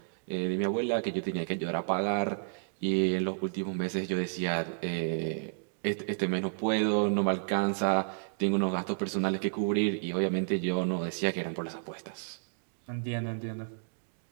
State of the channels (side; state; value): left; silent; digital silence